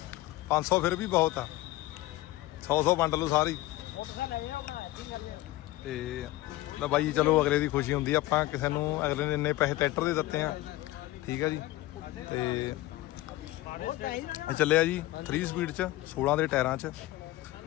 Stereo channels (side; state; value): right; quieter; 17.4 dB